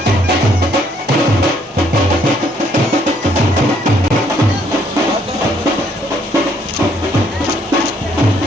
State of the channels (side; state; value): both; normal; correlation 0.67